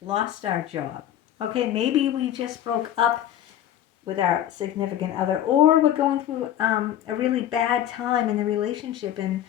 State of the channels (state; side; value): quieter; right; 11.5 dB